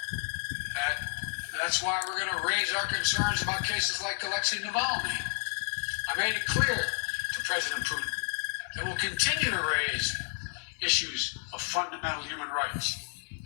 that's why we're going to raise our concerns about cases like Alexei Navalny. I made it clear to President Putin that we'll continue to raise issues of fundamental human rights,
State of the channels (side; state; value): right; silent; 57 dB below the other